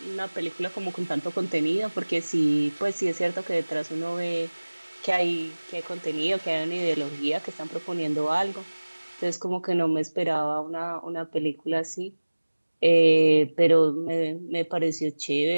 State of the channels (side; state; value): both; inverted; correlation -1.00